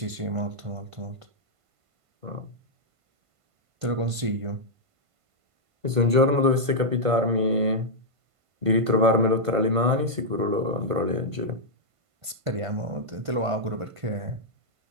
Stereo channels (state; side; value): late; left; 1.5 ms